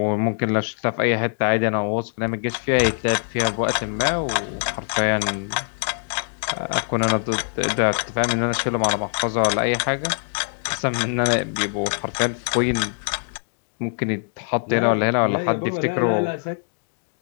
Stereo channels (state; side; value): silent; right; 63 dB below the other